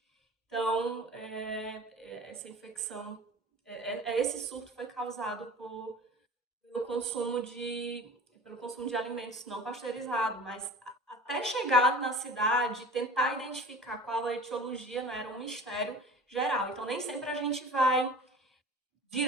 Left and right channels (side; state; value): both; normal; correlation 0.40